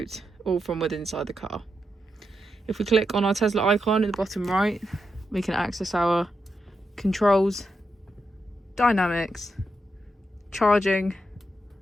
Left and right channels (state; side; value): normal; both; correlation 0.85